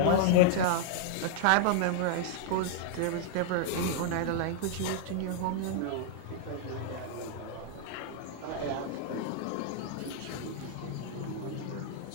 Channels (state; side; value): different; both; correlation -0.01